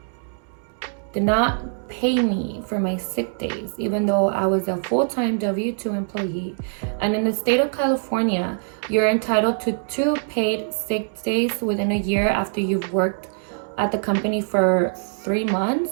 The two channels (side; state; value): left; silent; digital silence